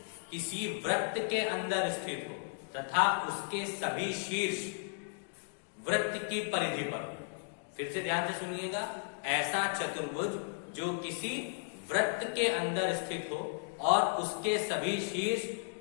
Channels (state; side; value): silent; right; digital silence